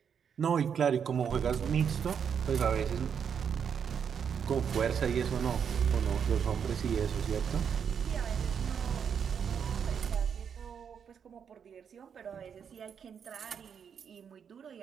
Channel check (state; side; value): quieter; left; 7.4 dB